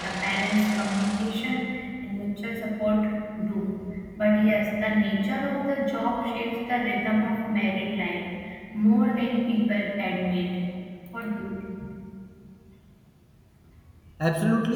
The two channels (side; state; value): both; identical; correlation 1.00